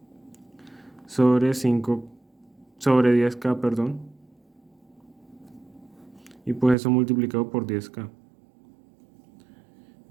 sobre 10K, perdón, y pues eso multiplicado por 10K.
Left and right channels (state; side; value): drops out; left; at 6.8 s